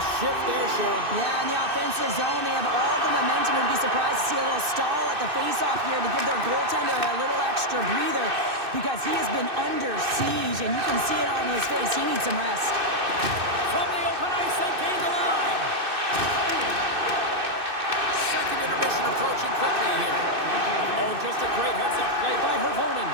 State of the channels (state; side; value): late; left; 2.6 ms